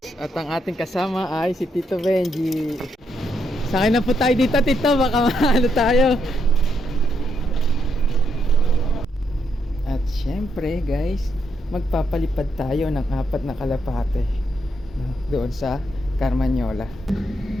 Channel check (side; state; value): both; normal; correlation 0.78